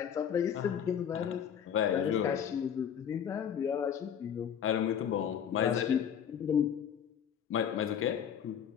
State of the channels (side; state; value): right; quieter; 8.6 dB